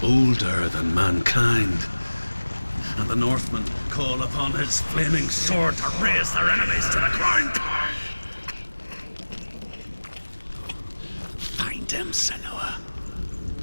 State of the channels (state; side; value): inverted; both; correlation -1.00